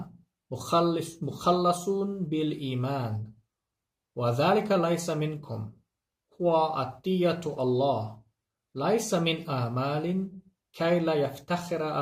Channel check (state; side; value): identical; both; correlation 1.00